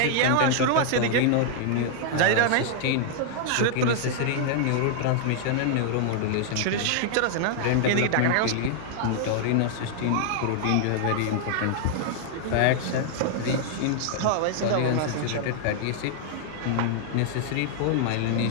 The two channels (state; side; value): different; both; correlation 0.00